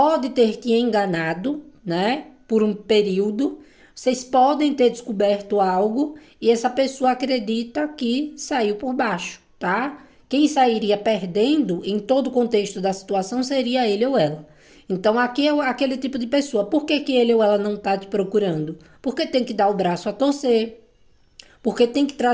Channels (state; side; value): identical; both; correlation 1.00